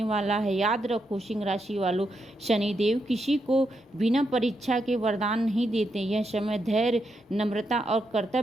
वाला है। याद रखो सिंह राशि वालों, शनिदेव किसी को बिना परीक्षा के वरदान नहीं देते। यह समय धैर्य, नम्रता और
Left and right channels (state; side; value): normal; both; correlation 0.82